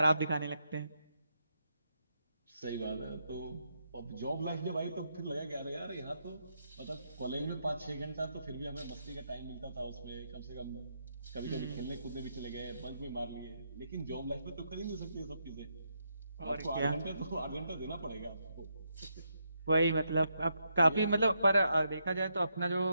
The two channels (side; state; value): both; inverted; correlation -0.80